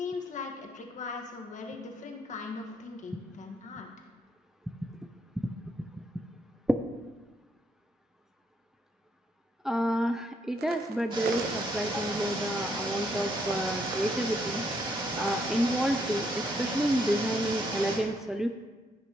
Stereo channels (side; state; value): both; normal; correlation 0.73